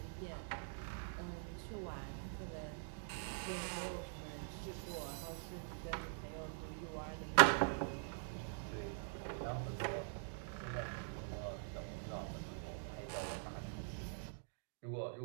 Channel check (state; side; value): silent; left; digital silence